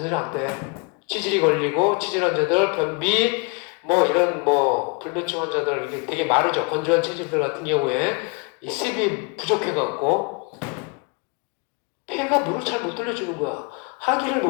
안 돼. 치질이 걸리고 치질 환자들 변비 뭐 이런 뭐 불면증 환자들 이게 되게 마르죠. 건조한 체질들 같은 경우에 이 습이 부족해갖고 폐가 물을 잘 못 돌려주는 거야. 하기를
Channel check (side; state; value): right; quieter; 31.4 dB